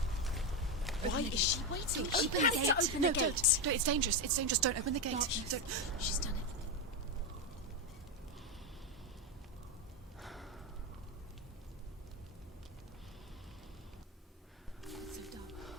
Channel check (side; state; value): both; normal; correlation 0.09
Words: Why is she waiting? She Open the has gate. to open No, the gate. don't. No, it's dangerous. It's dangerous. Don't open the gate. No, don't. She's done it.